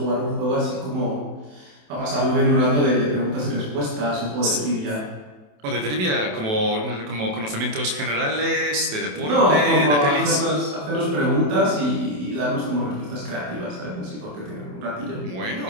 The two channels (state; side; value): late; left; 27 ms